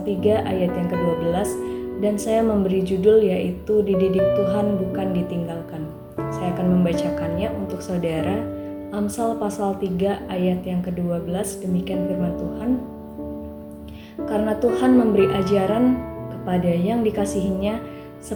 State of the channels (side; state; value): both; identical; correlation 1.00